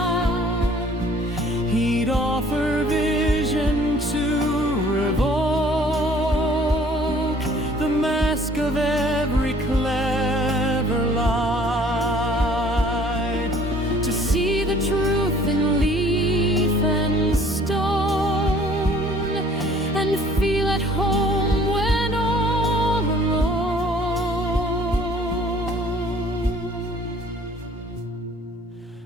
He'd offer vision to revoke the mask of every clever lie, To see the truth in leaf and stone, and feel at home when all alone.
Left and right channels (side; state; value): both; normal; correlation 0.55